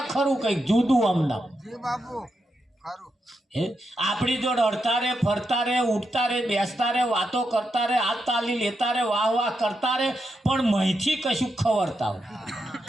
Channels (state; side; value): normal; both; correlation 0.84